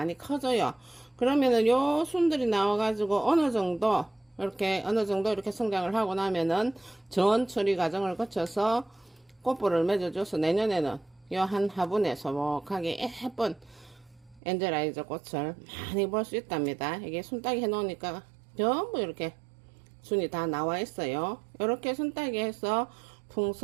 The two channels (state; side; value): drops out; left; at 14.4 s